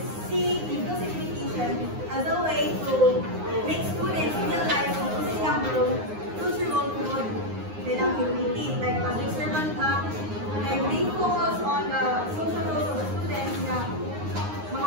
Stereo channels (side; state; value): left; late; 9.6 ms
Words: see inclusive education as a way to make students realize kung kasi nilang future role promote nilang community. Like public servant ka, like they focus on the social roles of the students na